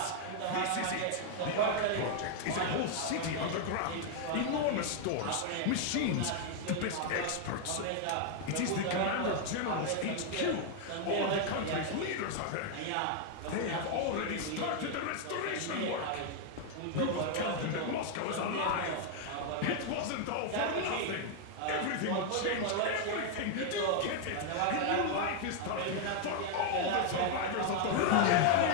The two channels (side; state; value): both; different; correlation 0.00